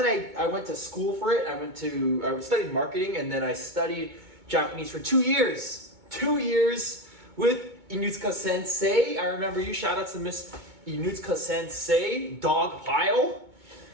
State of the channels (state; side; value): late; left; 2.2 ms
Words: I went to school for it. I studied marketing, and then I studied Japanese for 2 years. 2 years with Inutsuka Sensei. I remember you. Shout out to Miss Inutsuka Sensei, dog pile.